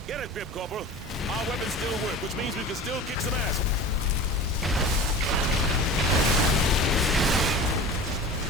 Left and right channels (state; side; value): normal; both; correlation 0.36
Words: Get it, Grip Corporal. Our weapons still work, which means we can still kick some ass.